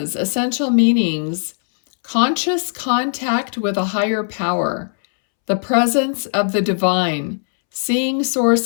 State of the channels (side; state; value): right; silent; 67 dB below the other